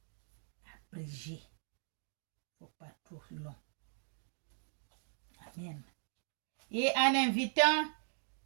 Abréger. Il ne faut pas trop long. Amen. Et en invitant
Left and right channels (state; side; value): silent; left; digital silence